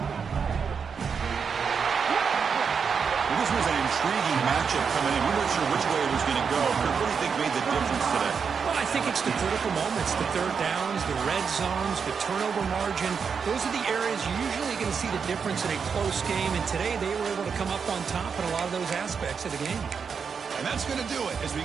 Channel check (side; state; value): left; quieter; 6.1 dB